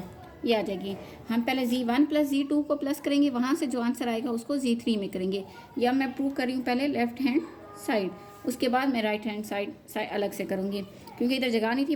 ये आ जाएगी। हम पहले Z1 + Z2 को प्लस करेंगे, वहाँ से जो आंसर आएगा उसको Z3 में करेंगे। या मैं प्रूव कर रही हूँ पहले लेफ्ट हैंड साइड, उसके बाद मैं राइट हैंड साइड अलग से करूँगी, क्योंकि इधर जगह नहीं थी,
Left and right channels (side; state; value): both; identical; correlation 1.00